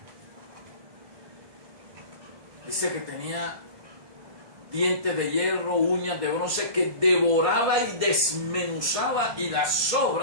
Dice que tenía dientes de hierro, uñas de bronce, que devoraba y desmenuzaba y las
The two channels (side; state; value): left; late; 1.6 ms